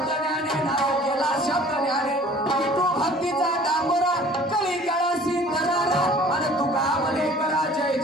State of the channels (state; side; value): normal; both; correlation 0.50